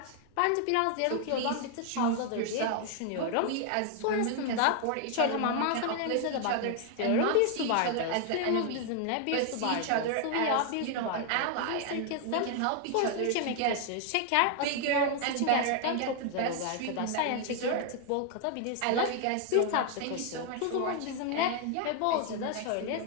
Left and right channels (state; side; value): different; both; correlation 0.00